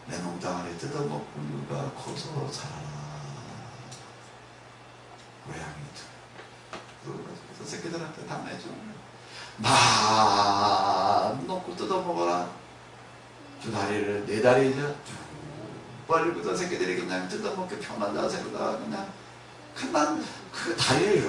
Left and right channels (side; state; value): both; identical; correlation 1.00